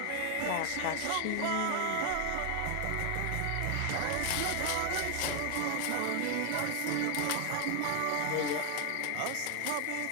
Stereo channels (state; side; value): different; both; correlation 0.00